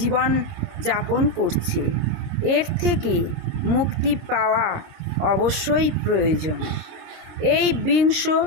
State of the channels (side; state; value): left; late; 26 ms